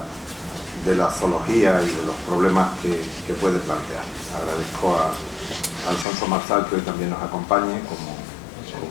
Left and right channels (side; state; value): right; drops out; at 6.1 s